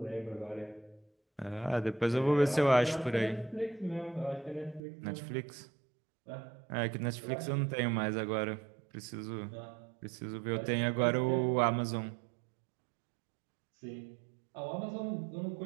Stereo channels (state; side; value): drops out; left; at 4.8 s